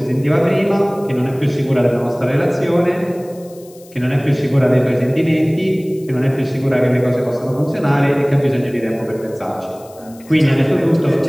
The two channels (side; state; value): left; noise; hiss, 25 dB below the sound